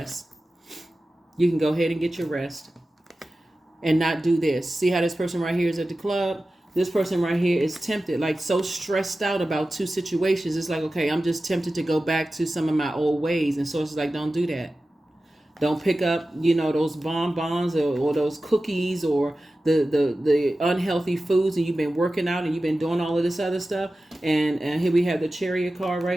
You can go ahead and get your rest and not do this. See how this person right here is at the club? This person right here is tempted, like so stressed out about two situations. It's like, okay, I'm just tempted to go back to some of my old ways. And Source is like, don't do that. Don't pick up, those bonbons or those cookies or the unhealthy foods, and you've been working out and you've been doing all of this other stuff. And here we have the Chariot card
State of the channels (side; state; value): both; normal; correlation 0.95